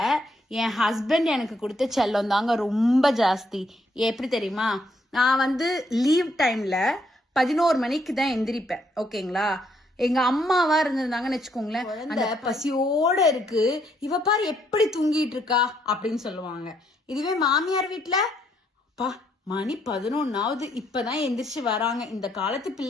என் ஹஸ்பண்ட் எனக்கு கொடுத்த செல்லம் தாங்க ரொம்ப ஜாஸ்தி. எப்படி தெரியுமா? நான் லீவ் டைம்ல 11 மணிக்கு தான் எந்திரிப்பேன். ஓகேங்களா? எங்க அம்மாவா இருந்திருந்தாங்கன்னு வச்சுக்கோங்களேன், அந்த பசியோட இருக்கு, இவ பாரு எப்படி தூங்கிட்டு இருக்கா அப்படின்னு சொல்லுவாங்க. இதுவே மாமியார் வீட்டுல, பா மணி 11ஆவது இப்பதான் எந்திரிச்சு வராங்க, இந்த காலத்து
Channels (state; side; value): normal; both; correlation 0.72